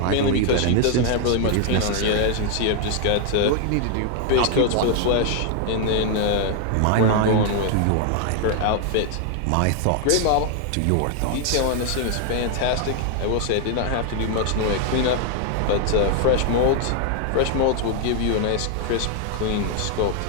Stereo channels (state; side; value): different; both; correlation 0.00